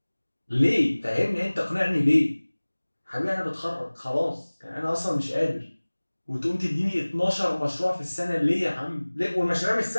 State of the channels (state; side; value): inverted; both; correlation -1.00